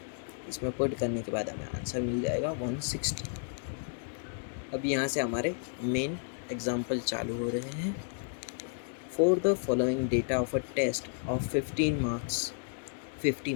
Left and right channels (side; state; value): right; silent; digital silence